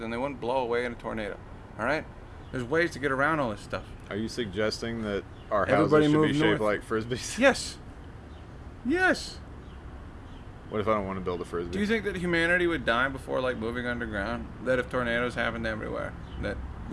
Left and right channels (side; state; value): both; identical; correlation 1.00